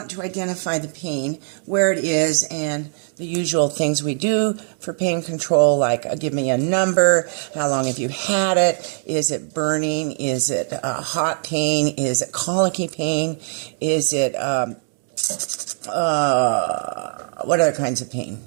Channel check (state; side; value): silent; left; digital silence